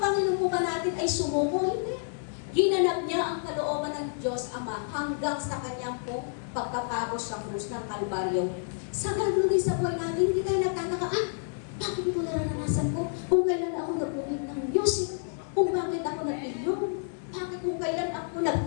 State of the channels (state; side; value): silent; right; 58 dB below the other